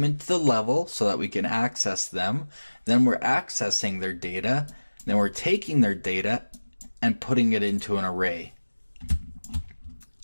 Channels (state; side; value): inverted; both; correlation -1.00